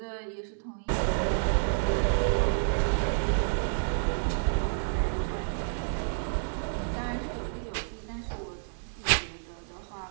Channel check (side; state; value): left; silent; digital silence